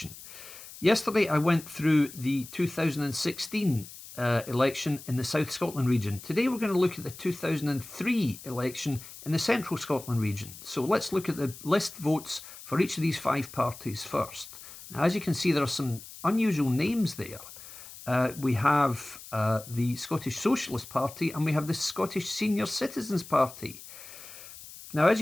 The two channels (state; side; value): noise; left; hiss, 16 dB below the sound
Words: Yesterday I went through the 2016 election in the South Scotland region. Today we're going to look at the 2003 election in the Central Scotland region. So let's look at the list votes for each of these five parties first. Now, as you can see, there are some unusual names there. We have the Scottish Socialist Party and we have the Scottish Senior Citizens Party. Now, as